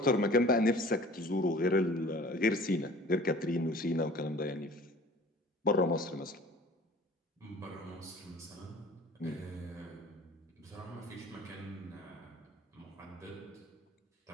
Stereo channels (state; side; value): normal; both; correlation 0.47